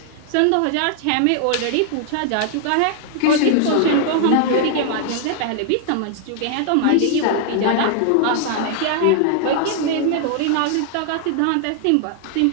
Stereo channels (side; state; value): both; different; correlation 0.00